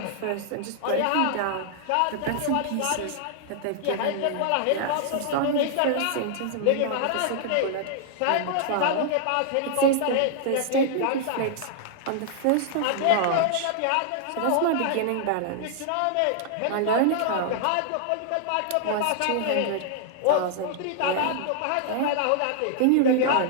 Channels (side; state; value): both; different; correlation -0.01